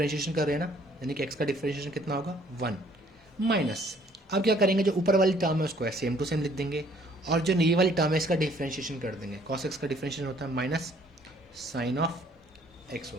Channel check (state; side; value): normal; both; correlation 0.61